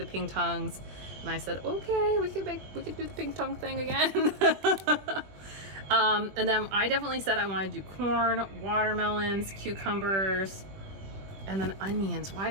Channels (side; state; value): left; late; 21 ms